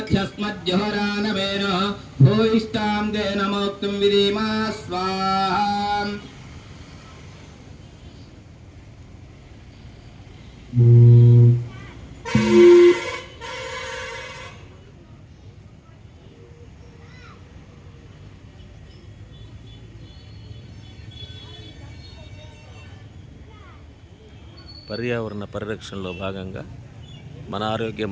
పర్యావరణ పరిరక్షణలో భాగంగా మన ఆరోగ్యం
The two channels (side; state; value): both; identical; correlation 1.00